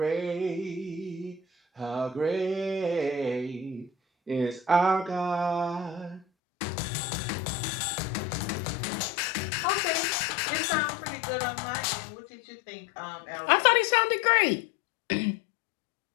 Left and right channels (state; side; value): drops out; right; at 6.2 s